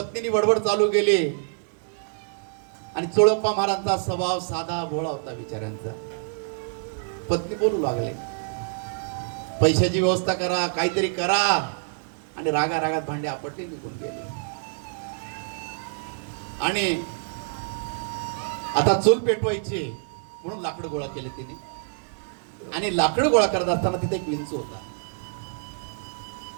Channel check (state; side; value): silent; left; digital silence